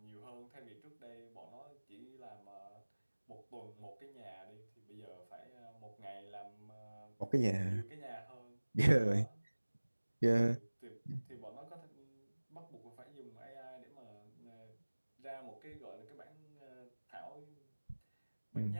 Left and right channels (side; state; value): both; inverted; correlation -1.00